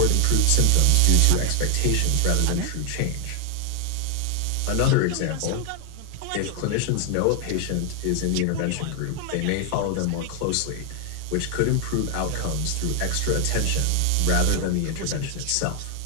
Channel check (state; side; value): different; both; correlation 0.00